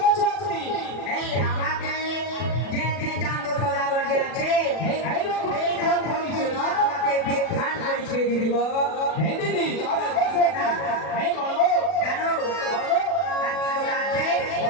সত্যি। এই আমাকে যে যে চান্দ সদাগর যে আছে এইরকম এই বিধান করেছে না? আমাকে বিধান করেছে দিদি গো। হ্যাঁ দিদি তবে কোথায় কি? এই বলো। জানো আর কি কথা আছে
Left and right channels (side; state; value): right; late; 40 ms